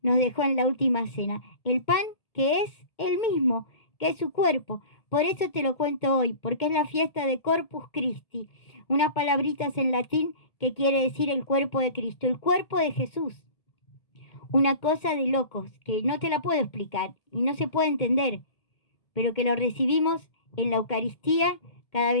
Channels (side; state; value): right; late; 2.1 ms